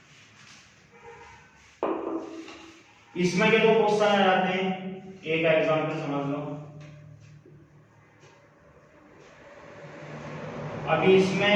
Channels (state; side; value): identical; both; correlation 1.00